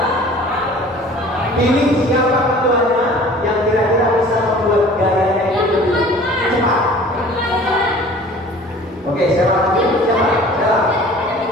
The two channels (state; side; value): normal; both; correlation 0.47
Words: Pilih siapa ketuanya yang kira-kira bisa membuat gayanya itu lebih cepat. Oke, siapa lagi? Siapa?